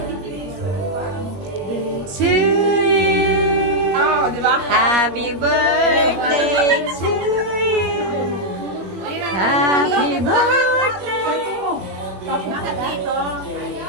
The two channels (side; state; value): left; late; 21 ms